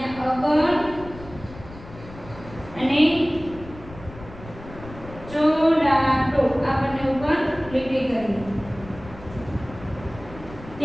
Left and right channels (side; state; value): left; noise; rumble, 16 dB below the sound